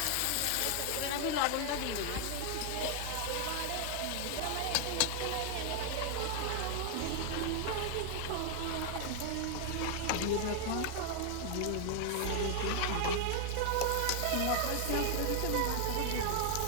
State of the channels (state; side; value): different; both; correlation 0.00